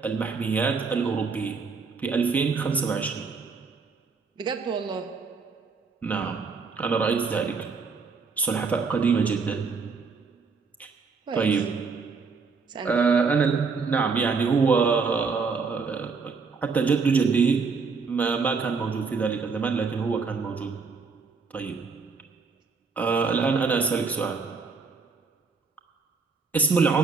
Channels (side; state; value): left; quieter; 4.9 dB